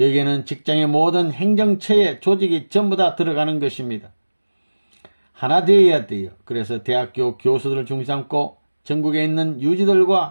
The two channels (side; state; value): both; inverted; correlation -1.00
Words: 직장의 모든 행정처의 조직이 전부 다 들어가는 것입니다. 하나 되어야 돼요. 그래서 대학교 교수들을 중심 삼고 전국에 있는